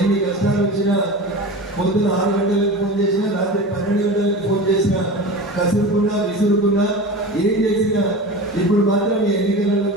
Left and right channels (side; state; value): both; normal; correlation 0.31